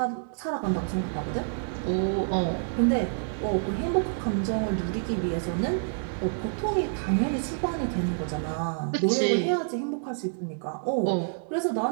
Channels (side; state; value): left; silent; 59 dB below the other